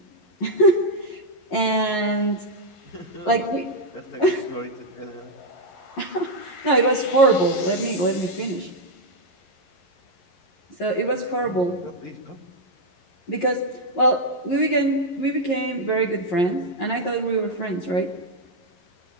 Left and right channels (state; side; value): late; right; 11 ms